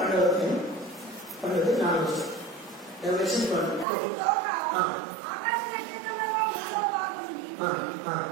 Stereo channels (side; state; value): left; drops out; at 3.9 s